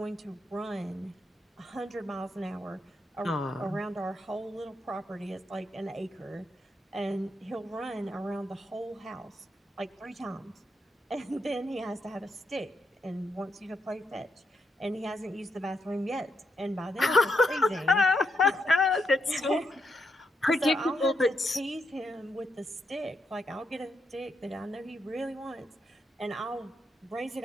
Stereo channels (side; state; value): both; normal; correlation 0.80